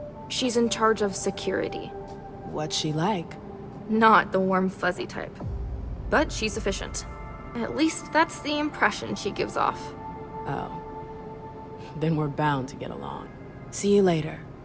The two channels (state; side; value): identical; both; correlation 1.00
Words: She's in charge of security. What's she like? Not the warm, fuzzy type. But she's efficient. At least that's the impression she gives off. Oh. Then we're bound to get along. See you later.